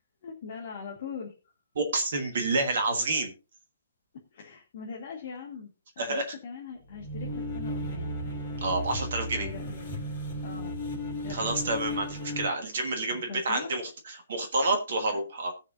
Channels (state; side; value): inverted; both; correlation -0.58